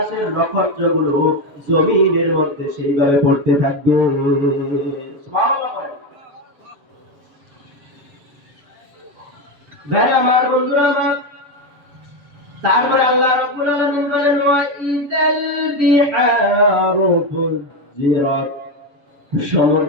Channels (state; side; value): late; left; 7.3 ms